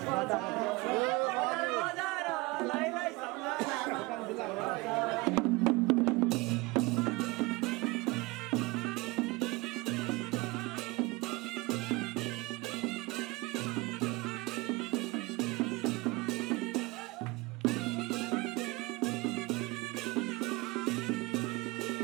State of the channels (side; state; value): left; quieter; 23.7 dB